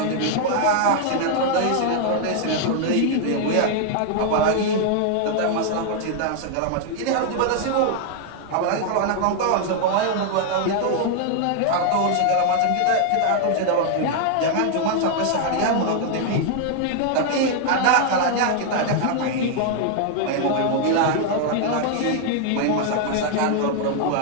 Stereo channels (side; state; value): both; different; correlation 0.00